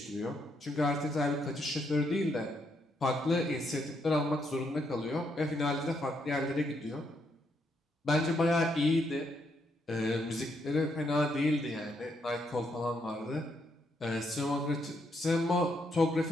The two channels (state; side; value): normal; both; correlation 0.76